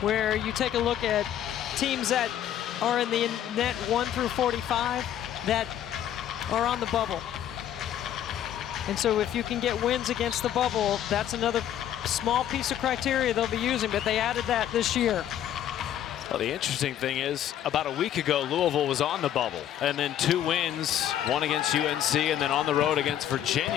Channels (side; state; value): right; quieter; 10.8 dB